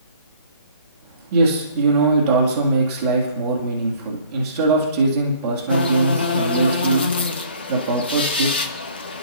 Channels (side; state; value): both; inverted; correlation -0.54